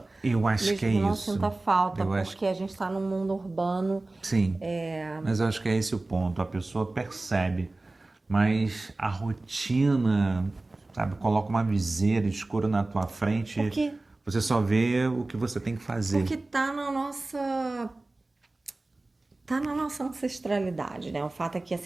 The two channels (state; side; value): quieter; left; 3.0 dB